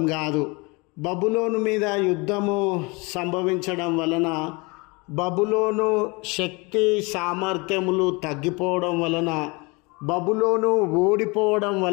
కాదు. బబులోను మీద యుద్ధము సంభవించడం వలన, బబులోను శక్తి సామర్థ్యములు తగ్గిపోవడం వలన, బబులోను ఓడిపోవడం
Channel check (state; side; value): quieter; right; 27.3 dB